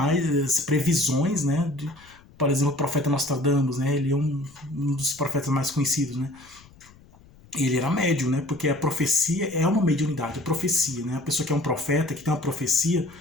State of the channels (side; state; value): left; noise; rumble, 26 dB below the sound